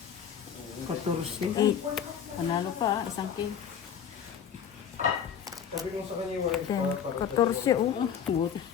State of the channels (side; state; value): right; quieter; 8.2 dB